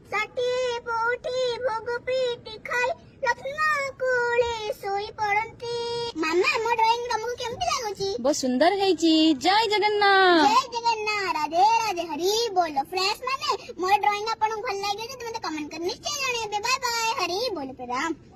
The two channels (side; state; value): both; identical; correlation 1.00